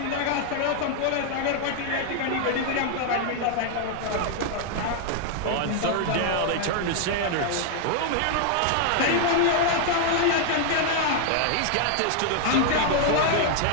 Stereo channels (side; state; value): both; different; correlation 0.00